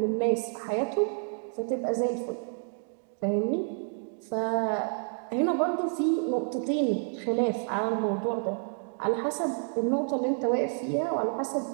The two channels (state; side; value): silent; left; 58 dB below the other